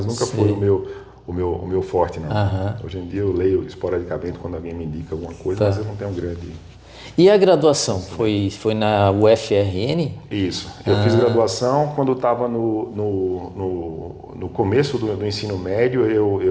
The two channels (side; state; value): both; identical; correlation 1.00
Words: nunca foi o Sei. meu, o meu forte, não. Hoje em dia eu leio esporadicamente quando alguém me indica alguma coisa, mas eu não tenho um grande E a graduação? conhecimento. Foi na UFRN? Isso. Eu fiz graduação quando estava no começo do ensino médio.